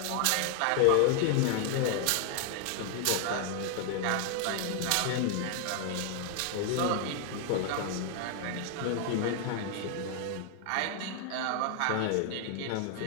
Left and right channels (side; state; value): both; different; correlation 0.00